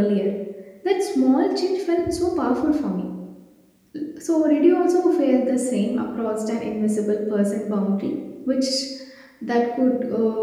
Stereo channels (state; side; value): identical; both; correlation 1.00